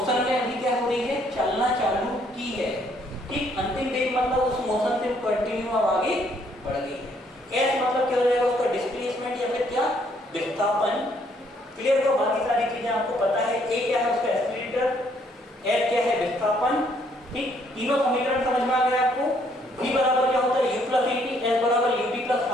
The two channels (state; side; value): normal; both; correlation 0.67